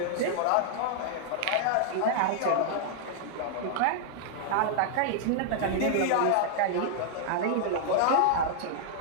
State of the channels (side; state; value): both; different; correlation -0.01